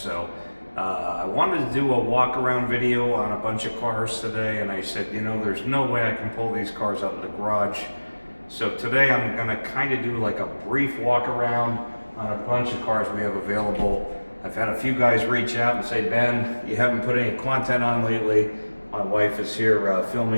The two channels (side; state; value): both; inverted; correlation -1.00